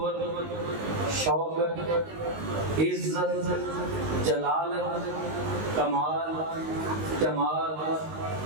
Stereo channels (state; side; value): late; left; 19 ms